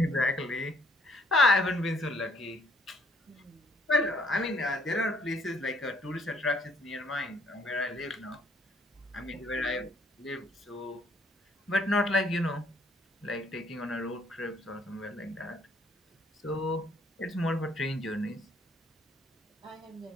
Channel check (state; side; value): normal; both; correlation 0.65